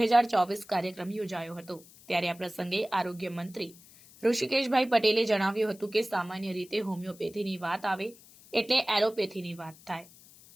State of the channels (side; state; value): left; noise; hiss, 23 dB below the sound